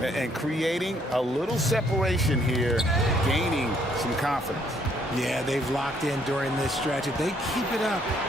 And creating a little separation here, gaining some confidence. Yeah, they've locked in during this stretch. If they keep it up,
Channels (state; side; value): normal; both; correlation 0.67